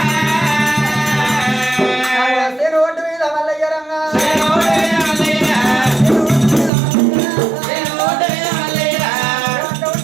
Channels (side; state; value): left; drops out; at 6.7 s